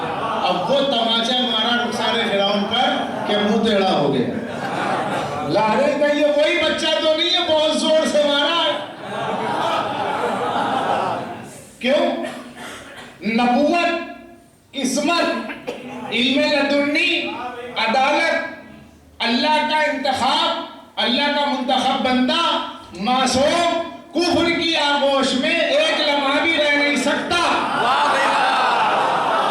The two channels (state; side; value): identical; both; correlation 1.00